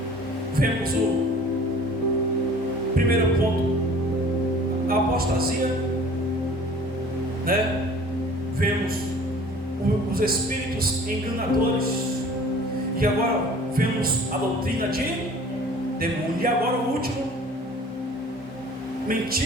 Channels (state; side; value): normal; both; correlation 0.47